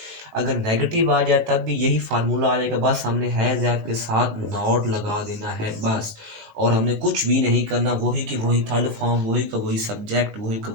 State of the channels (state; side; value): late; left; 18 ms